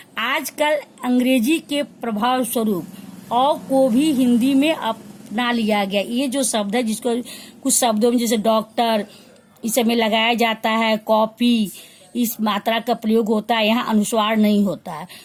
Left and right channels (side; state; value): both; identical; correlation 1.00